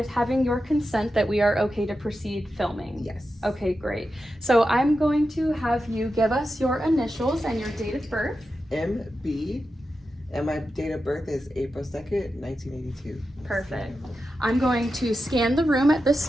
having your consent that we are okay to proceed filming? Yes. Okay, great. So I'm going to have you give us your initials and your date of birth. MB, and my date of birth is April 2nd, 1982. Perfect. I'm going to scan the room at this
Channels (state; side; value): normal; both; correlation 0.90